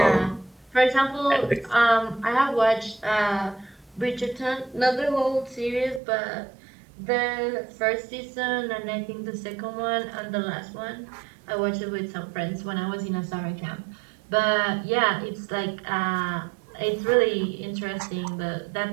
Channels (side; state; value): left; drops out; at 6.0 s